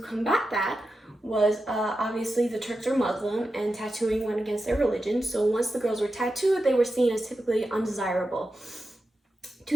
that was obviously the Turks are Muslim, and tattooing went against their religion. So once the girls were tattooed, they were seen as typically undesirable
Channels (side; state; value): both; normal; correlation 0.91